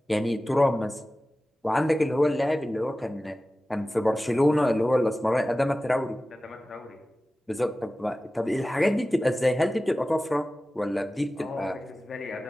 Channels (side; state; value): both; normal; correlation 0.96